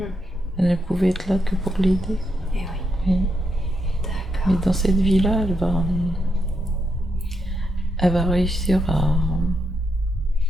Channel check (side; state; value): both; normal; correlation 0.81